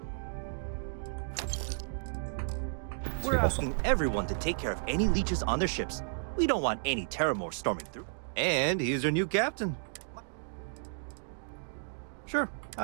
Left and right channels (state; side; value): silent; left; digital silence